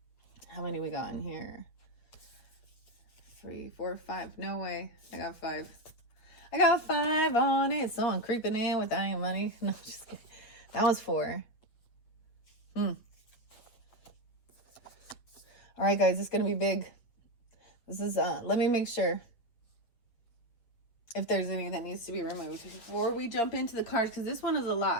How many we got in here? 3, 4, 5. No way. I got 5. I got 5 on it. So I'm creeping in with that money. No, just kidding. That was 4. All right, guys. It's gonna be big. This is let me make sure if there's any that needs to be removed before we jump into the cards, because this one is a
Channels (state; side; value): late; right; 8.2 ms